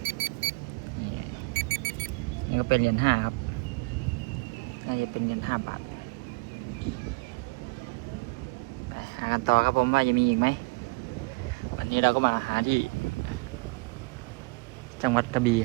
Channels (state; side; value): quieter; left; 28.9 dB